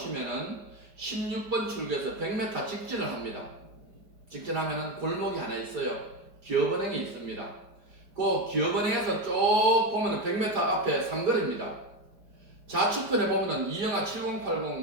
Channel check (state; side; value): late; left; 4.8 ms